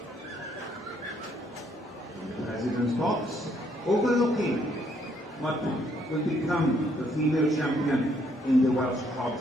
president's box, overlooking what will become the female champion in the Welsh Cob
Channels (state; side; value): normal; both; correlation 0.69